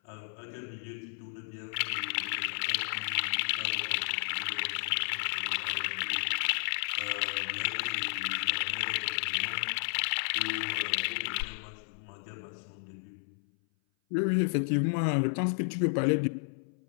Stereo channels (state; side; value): silent; right; 56 dB below the other